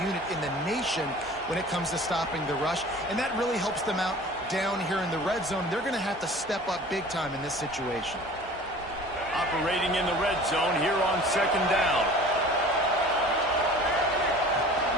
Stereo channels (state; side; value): normal; both; correlation 0.44